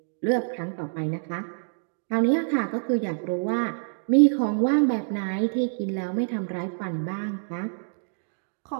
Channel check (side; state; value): left; silent; digital silence